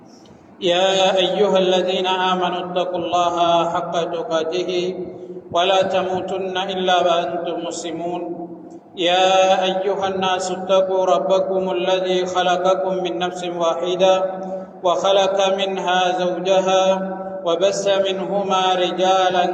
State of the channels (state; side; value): identical; both; correlation 1.00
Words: يا أيها الذين آمنوا اتقوا الله حق تقاته ولا تموتن إلا وأنتم مسلمون يا أيها الناس اتقوا ربكم الذي خلقكم من نفس واحدة وخلق منها زوجها وبث منهما رجالا